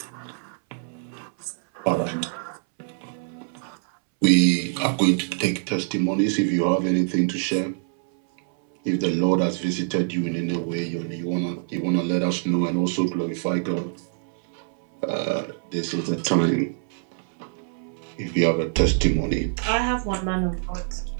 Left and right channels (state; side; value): silent; left; 62 dB below the other